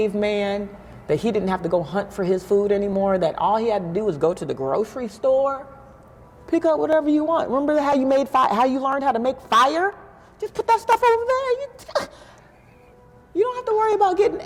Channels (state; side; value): identical; both; correlation 1.00